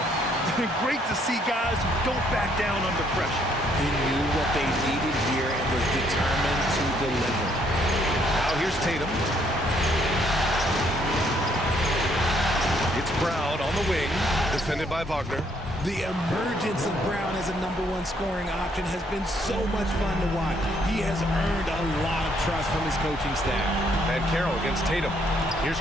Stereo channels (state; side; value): normal; both; correlation 0.68